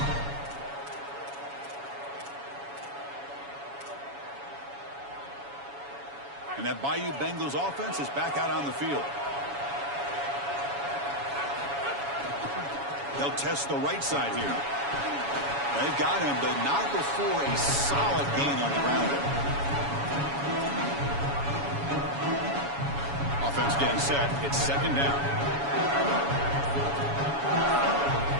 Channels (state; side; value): late; left; 7.1 ms